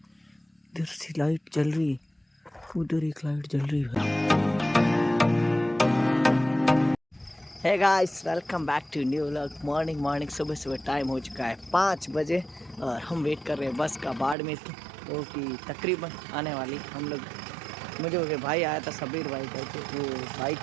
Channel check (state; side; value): drops out; left; at 14.4 s